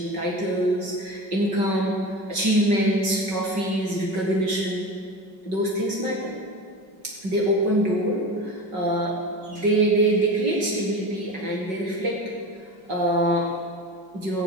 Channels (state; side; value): late; left; 5.3 ms